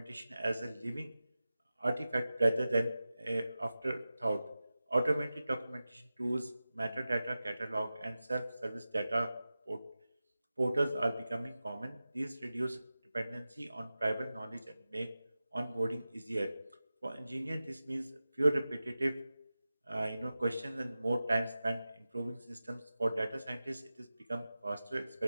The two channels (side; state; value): both; inverted; correlation -0.94